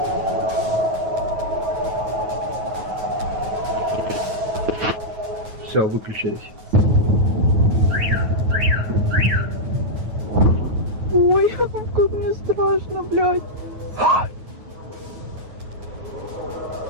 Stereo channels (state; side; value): late; left; 9.3 ms